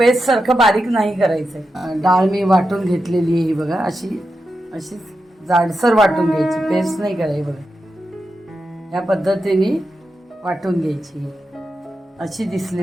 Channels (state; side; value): normal; both; correlation 0.88